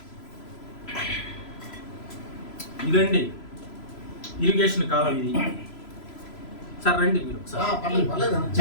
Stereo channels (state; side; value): late; right; 3.0 ms